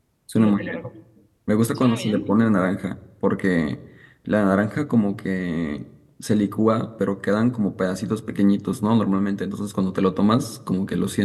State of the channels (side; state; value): both; identical; correlation 1.00